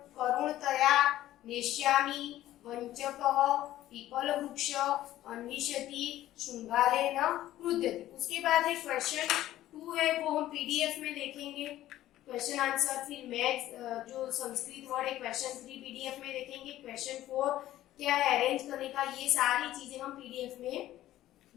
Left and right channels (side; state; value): right; quieter; 14.1 dB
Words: नेष्यामि, वंचकः, पीपलवृक्ष, अन्विष्यति, शृंगालेन क्रुध्यति। उसके बाद है क्वेश्चन 2 है, वो हम पीडीएफ में देखेंगे क्वेश्चन आंसर। फिर मैथ्स जो संस्कृत वर्ड है क्वेश्चन 3 पीडीएफ में देखेंगे। क्वेश्चन 4 क्या है अरेंज करने का, ये सारी चीजें हम पीडीएफ में